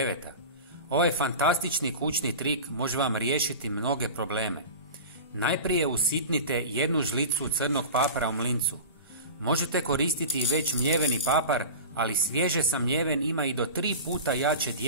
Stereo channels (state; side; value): inverted; both; correlation -0.32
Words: Ovaj fantastični kućni trik može vam riješiti mnoge probleme. Najprije usitnite 1 žlicu crnog papara u mlincu. Možete koristiti već mljeveni papar, ali svježe samljeven ima i do 3 puta jače